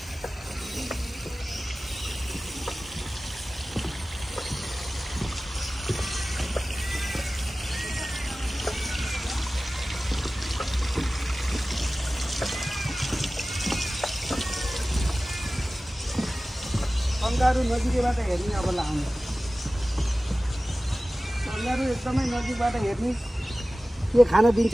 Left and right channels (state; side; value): normal; both; correlation 0.97